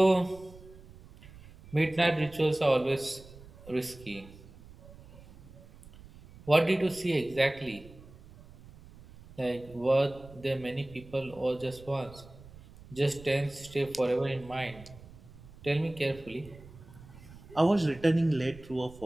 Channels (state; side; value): noise; right; rumble, 20 dB below the sound